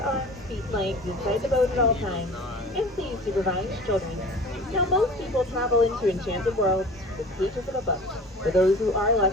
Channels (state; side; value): normal; both; correlation 0.41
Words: feet, legs inside the boat at all times, and please supervise children. Now, most people travel into enchanted worlds with pages of a book. For those who are